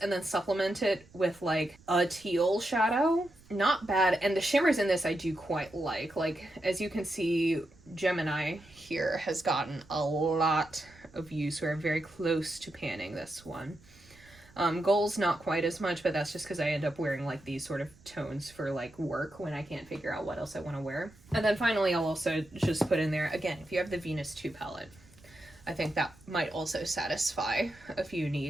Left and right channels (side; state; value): right; noise; rumble, 25 dB below the sound